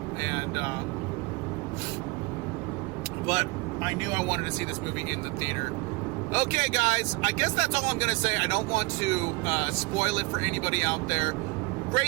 but I knew I wanted to see this movie in the theater. Okay, guys, I guess that's all I'm going to say. I don't want to spoil it for anybody out there.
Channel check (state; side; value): quieter; left; 26.1 dB